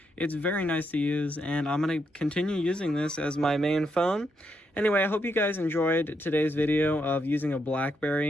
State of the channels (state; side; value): normal; both; correlation 0.79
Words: It's very nice to use, and I'm going to continue using this as my main phone. Anyway, I hope you guys enjoyed today's video of using a